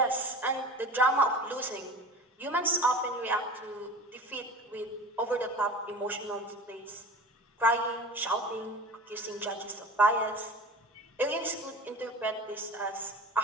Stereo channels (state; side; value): normal; both; correlation 0.37